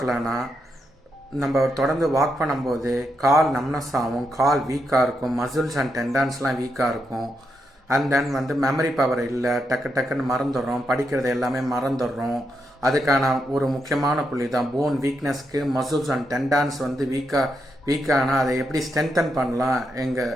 நம்ம தொடர்ந்து வாக் பண்ணும்போது கால் நம்னஸ் ஆகும், கால் வீக்காக இருக்கும், மசில்ஸ் அண்ட் டெண்டான்ஸ்லாம் வீக்காக இருக்கும். அண்ட் தென் மெமரி பவர் இல்லை, டக்குன்னு மறந்துடுறோம், படிக்கிறது எல்லாமே மறந்துடுறோம். அதுக்கான ஒரு முக்கியமான புள்ளி தான் போன் வீக்னஸ்க்கு மசில்ஸ் அண்ட் டெண்டான்ஸ் வீக்கானால் அதை எப்படி ஸ்ட்ரென்தன் பண்ணலாம்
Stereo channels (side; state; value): both; normal; correlation 0.82